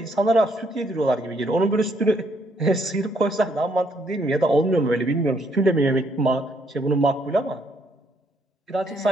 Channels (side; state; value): both; normal; correlation 0.70